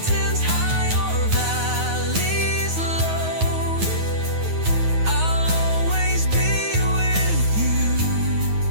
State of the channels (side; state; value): left; late; 9.4 ms